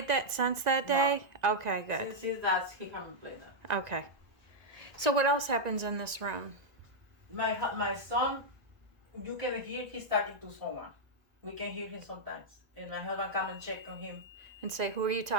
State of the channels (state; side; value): late; left; 2.0 ms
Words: that since that day? No. Okay, good. Since that, he haven't played that. Okay. So what else happens in this room? My son, you can hear he's talking to someone. We can hear him sometimes. And my husband come and check on him. And say, who are you